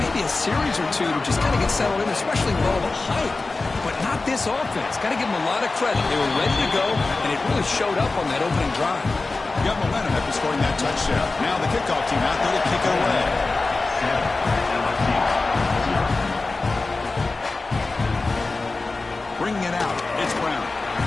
a series or two to just kind of get settled in, especially with all the hype. But not this offense. Got to give them a lot of credit. They were ready to go, and it really showed up on that opening drive. Got momentum after scoring that touchdown. Now the kickoff team out there to kick it away. Bringing it out. It's Brown.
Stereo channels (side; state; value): right; quieter; 3.6 dB